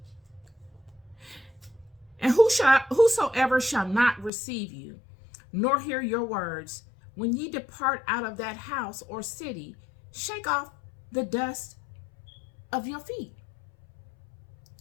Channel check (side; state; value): right; drops out; at 4.3 s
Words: And whosoever shall not receive you, nor hear your words, when ye depart out of that house or city, shake off the dust of your feet.